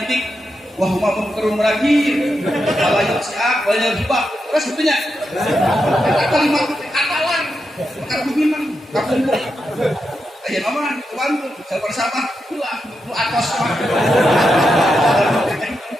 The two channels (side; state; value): both; normal; correlation 0.86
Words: bik wa huma munkarun nakir wala yusiak wa yajibak. Terus sebetulnya kalimat katalan bukan memang kapun aja nama bantu bersama pulang lu atos